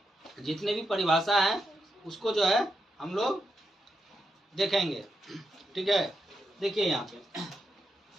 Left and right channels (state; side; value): normal; both; correlation 0.84